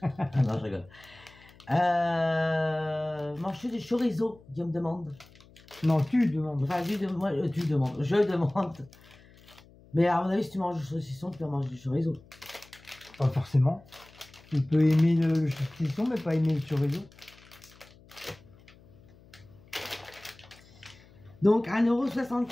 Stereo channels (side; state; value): left; noise; hum, 25 dB below the sound